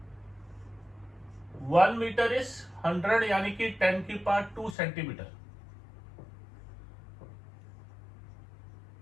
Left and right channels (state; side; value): drops out; right; at 4.8 s